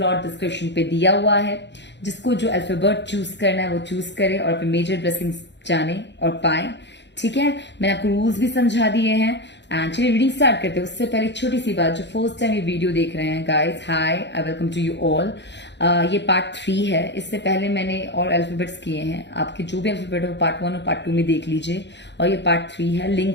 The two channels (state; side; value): late; right; 0.51 ms